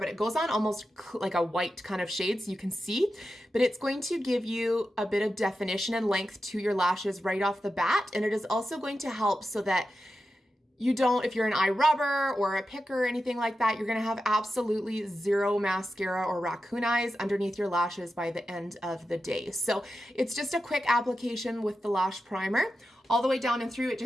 it goes on almost like a white kind of shade so you can see. But it's going to give you a bit of definition and length to your lashes right off the bat. And it is also going to help so that you don't, if you're an eye rubber or a picker or anything like that, you're gonna have absolutely zero mascara or raccoon eyes underneath your lashes by the end of the day. So it's just a quick application with the lash primer. All the way down and through, it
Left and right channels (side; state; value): both; normal; correlation 0.91